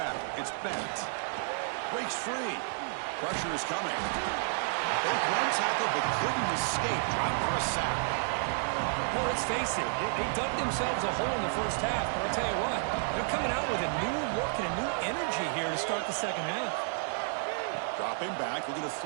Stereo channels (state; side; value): silent; left; 57 dB below the other